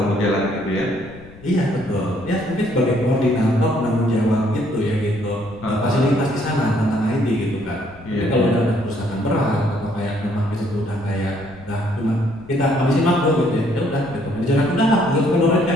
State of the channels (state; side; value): noise; left; rumble, 21 dB below the sound